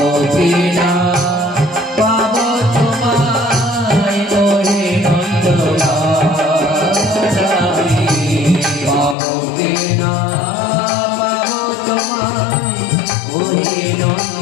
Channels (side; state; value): right; drops out; at 9.2 s